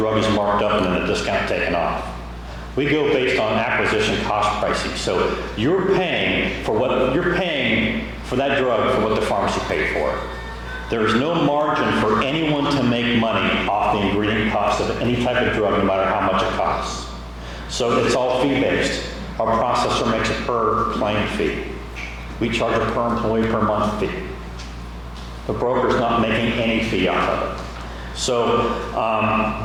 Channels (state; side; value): identical; both; correlation 1.00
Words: is marked up and then the discount taken off. We go based on acquisition cost pricing. So you're paying for that drug for what the pharmacy paid for. There's no margin for anyone to make money off the ingredient cost of any type of drug, no matter how much it costs. So it's all fee-based. Our processor makes a per claim fee. We charge a per employee per month fee. The broker's not making any fee off of it. So